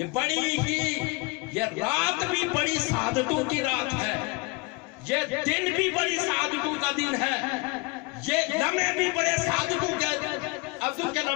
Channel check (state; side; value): quieter; right; 28.1 dB